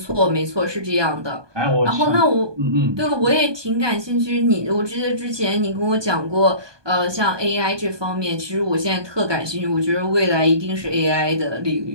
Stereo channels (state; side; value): late; left; 1.2 ms